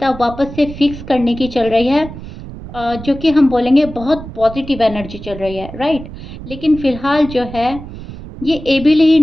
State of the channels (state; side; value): noise; right; rumble, 13 dB below the sound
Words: वापस से फिक्स करने की चल रही है, जो कि हम बोलेंगे बहुत पॉजिटिव एनर्जी चल रही है, राइट। लेकिन फिलहाल जो है ये एबल ही